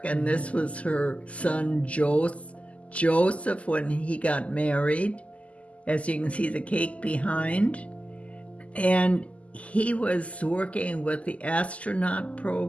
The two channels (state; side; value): late; right; 0.066 ms